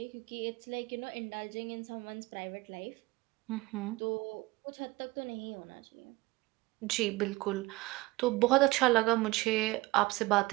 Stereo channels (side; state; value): left; quieter; 21.2 dB